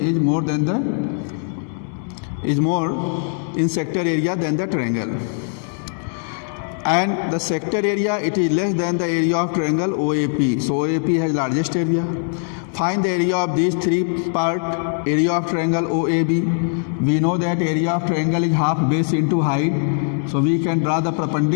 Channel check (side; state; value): right; silent; digital silence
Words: more in sector area than the triangle. And the sector area, it is less than the area of triangle OAP. So OAP has largest area. Find the area of these three parts. Area of triangle OAB. We know that area of triangle is half base into height. So we can draw the